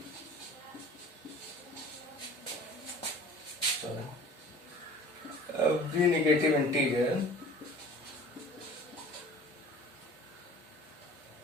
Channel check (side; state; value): both; normal; correlation 0.44